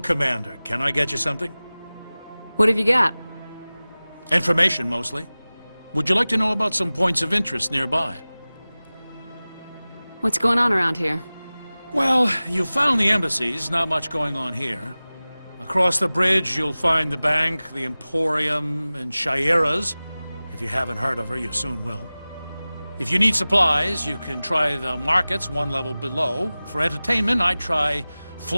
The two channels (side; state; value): both; inverted; correlation -0.98